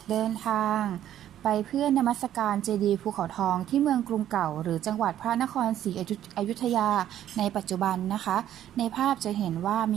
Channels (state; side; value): quieter; left; 11.5 dB